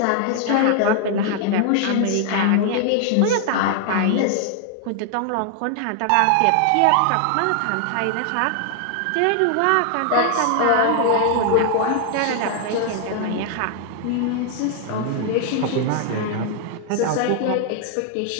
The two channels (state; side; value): different; both; correlation 0.00